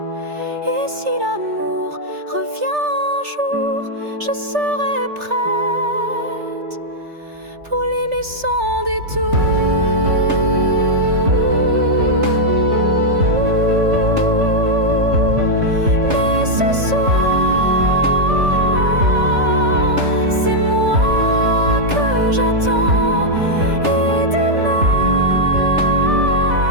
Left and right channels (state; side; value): late; left; 3.4 ms